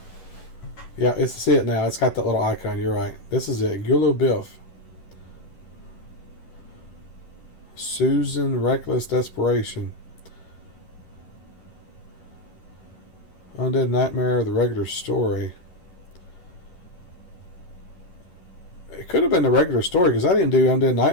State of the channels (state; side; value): late; right; 11 ms